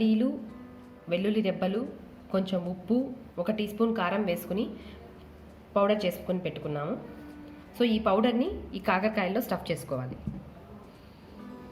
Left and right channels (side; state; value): both; identical; correlation 1.00